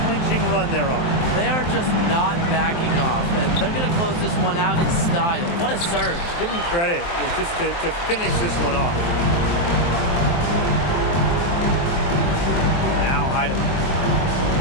run they're on. They are just not backing off, and they're going to close this one out in style. What a surge. Give them credit just to finish this one off. Now Heidemann.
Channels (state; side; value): late; right; 23 ms